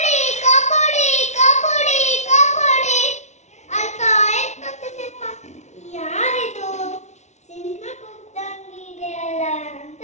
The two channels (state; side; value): late; right; 0.33 ms